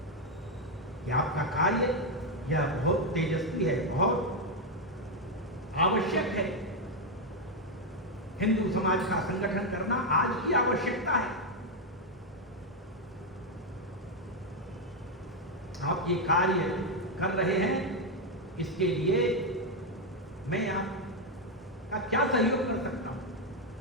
कि आपका कार्य यह बहुत तेजस्वी है, बहुत आवश्यक है। हिंदू समाज का संगठन करना आज की आवश्यकता है। आप ये कार्य कर रहे हैं, इसके लिए मैं आपका क्या सहयोग कर सकता हूं?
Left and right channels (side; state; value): both; normal; correlation 0.03